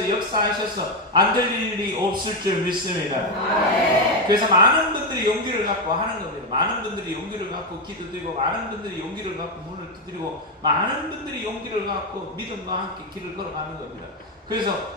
역사하셔서 안 될 일이 없을 줄 믿습니다. 그래서 많은 분들이 용기를 갖고 하는 겁니다. 많은 분들이 용기를 갖고 기도드리고 많은 분들이 용기를 갖고 문을 두드리고 많은 분들이 용기를 갖고 믿음과 함께 길을 걸어가는 겁니다.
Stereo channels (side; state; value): both; normal; correlation 0.07